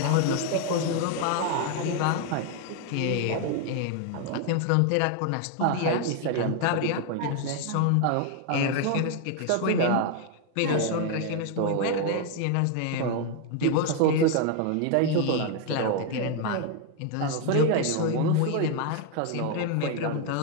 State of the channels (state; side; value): different; both; correlation 0.00